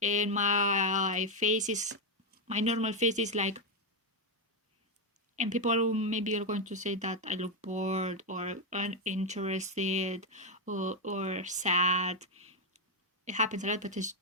and my normal face is like, and people maybe are going to say that I look bored or uninterested or sad. It happens a lot, but it's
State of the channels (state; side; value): normal; both; correlation 0.04